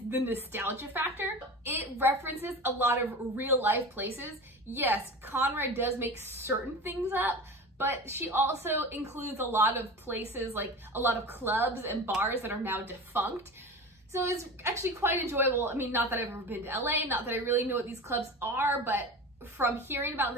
the nostalgia factor. It references a lot of real life places. Yes, Conrad does make certain things up, but she also includes a lot of places, like a lot of clubs and bars that are now defunct. So it's actually quite enjoyable. I mean, not that I've ever been to LA, not that I really know what these clubs are, but from hearing about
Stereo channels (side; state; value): both; normal; correlation 0.31